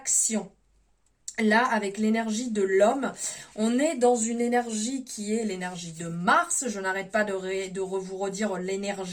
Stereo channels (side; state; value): both; identical; correlation 1.00